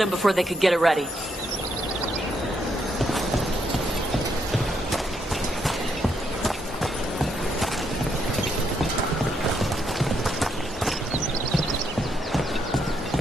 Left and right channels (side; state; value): both; normal; correlation 0.77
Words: before they could get it ready.